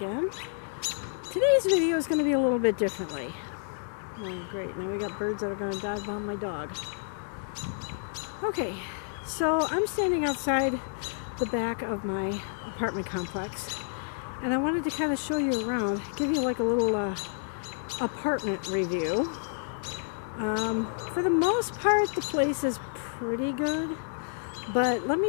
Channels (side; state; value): right; silent; digital silence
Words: Today's video is going to be a little bit differently. Oh, great. Now we got birds that are going to dive on my dog. Okay, so I'm standing outside the back of my apartment complex, and I wanted to kind of show you around, give you like a little apartment review. For the most part, the place is pretty good. But let